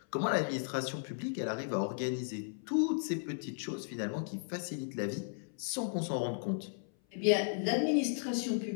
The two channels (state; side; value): silent; right; 54 dB below the other